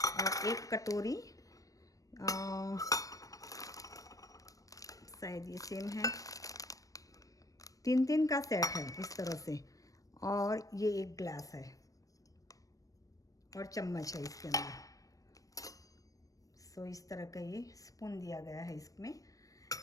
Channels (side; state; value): right; late; 0.16 ms